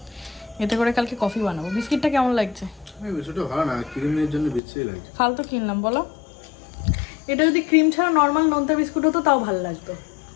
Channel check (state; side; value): drops out; right; at 4.6 s